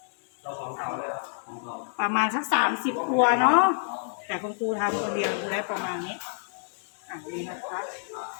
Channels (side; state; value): right; silent; 59 dB below the other